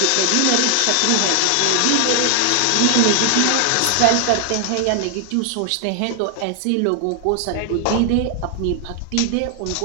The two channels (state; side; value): different; both; correlation 0.00